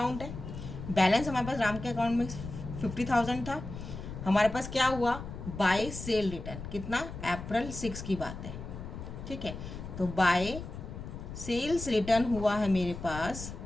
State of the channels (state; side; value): noise; left; rumble, 9 dB below the sound